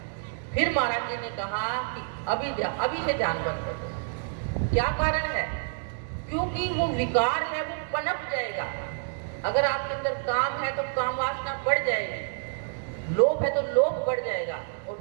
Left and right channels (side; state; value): left; silent; digital silence